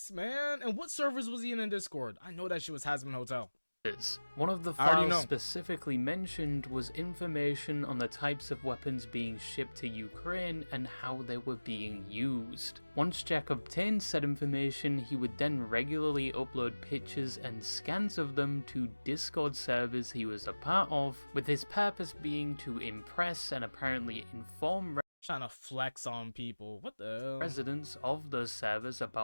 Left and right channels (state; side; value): inverted; both; correlation -1.00